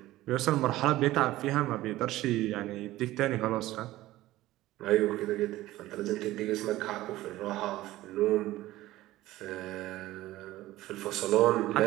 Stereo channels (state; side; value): quieter; left; 16.4 dB